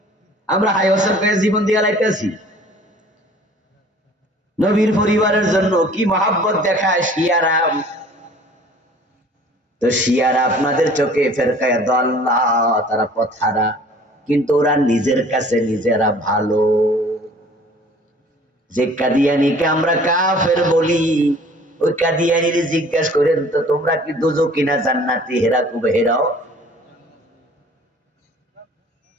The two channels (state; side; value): normal; both; correlation 0.50